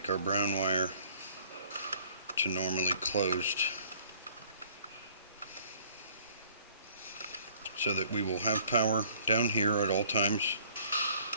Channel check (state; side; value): inverted; both; correlation -0.57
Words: our brown wire to normally closed, so that we will have power down here at all times,